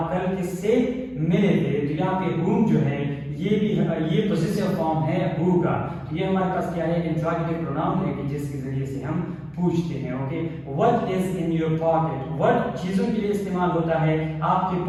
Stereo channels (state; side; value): identical; both; correlation 1.00